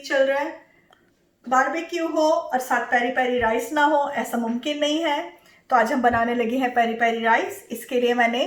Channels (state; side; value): identical; both; correlation 1.00